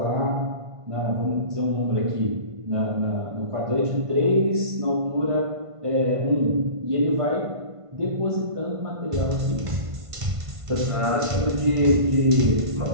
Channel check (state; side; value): late; left; 1.5 ms